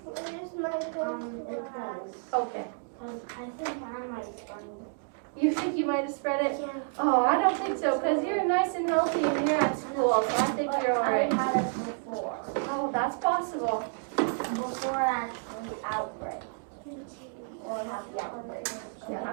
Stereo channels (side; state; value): left; silent; 58 dB below the other